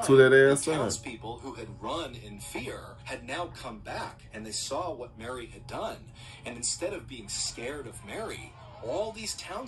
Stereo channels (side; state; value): both; identical; correlation 1.00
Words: the townspeople who had run in fear had now come back, and they saw what Mary had done, and instead of being scared of Mary, all these